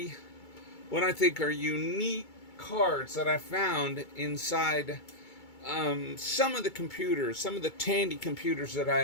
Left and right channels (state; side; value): late; right; 2.3 ms